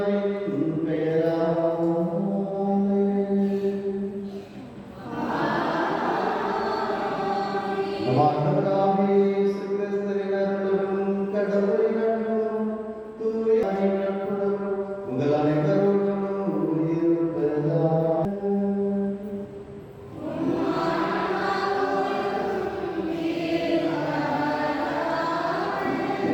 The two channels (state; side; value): identical; both; correlation 1.00